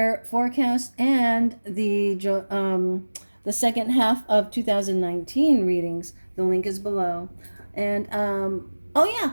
forecast and the second half of 2019 readings. The link is below. And oh yeah,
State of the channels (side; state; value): both; inverted; correlation -1.00